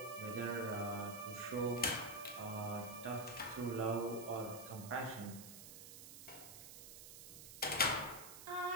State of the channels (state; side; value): noise; right; hiss, 12 dB below the sound